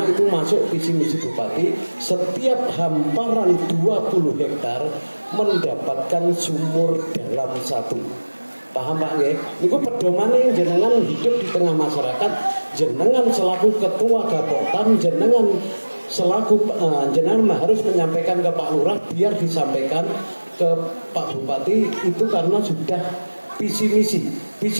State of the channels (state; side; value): inverted; both; correlation -1.00